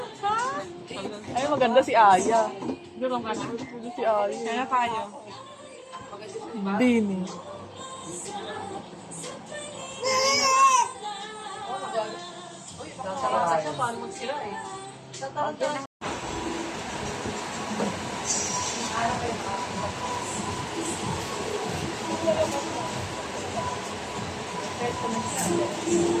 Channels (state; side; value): identical; both; correlation 1.00